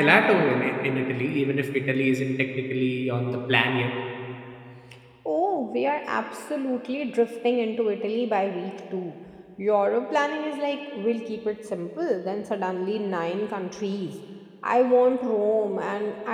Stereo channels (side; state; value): both; identical; correlation 1.00